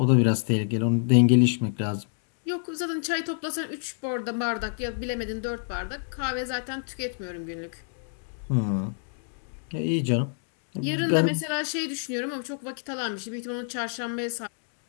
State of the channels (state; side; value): silent; right; digital silence